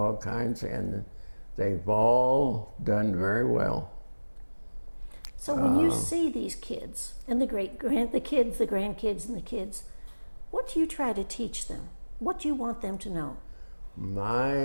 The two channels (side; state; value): both; inverted; correlation -1.00